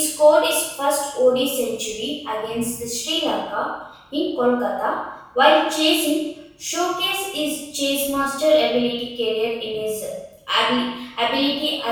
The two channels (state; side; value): identical; both; correlation 1.00